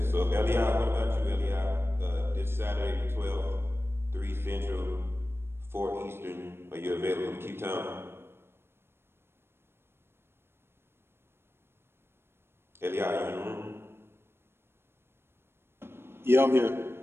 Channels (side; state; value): left; late; 0.12 ms